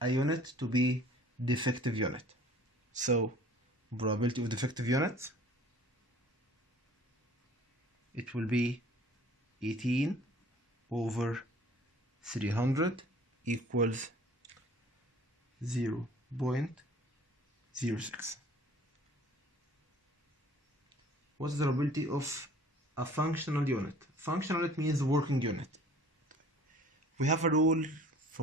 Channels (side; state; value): both; normal; correlation 0.50